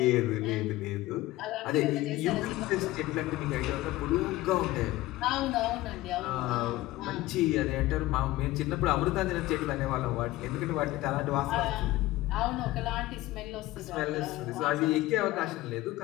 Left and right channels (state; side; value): quieter; right; 17.4 dB